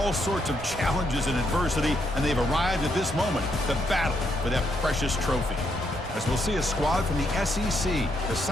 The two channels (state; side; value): noise; right; rumble, 14 dB below the sound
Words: sorts of challenges and adversity, and they've arrived at this moment, the battle for that precious trophy. As we'll see a squad from the SEC, the